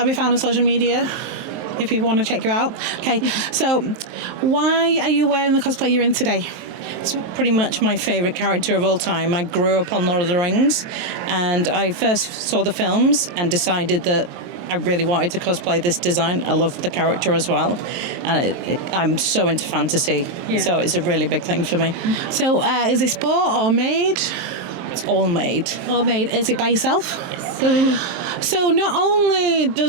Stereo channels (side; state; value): left; late; 23 ms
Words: be found on social media if people want to check you out? Okay, so why are you wearing the cosplay you're in today? It's pretty much my favourite character of all time. I grew up on Lord of the Rings, and I first saw the films and decided that I really wanted to cosplay this design. I love the character as well, and I'm so into fantasy, so it's a really big thing for me. So is it sport or made? It's all made. All made. Is it by yourself? Yes. So not only